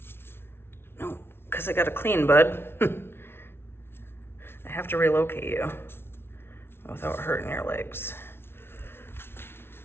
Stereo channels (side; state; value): right; late; 0.12 ms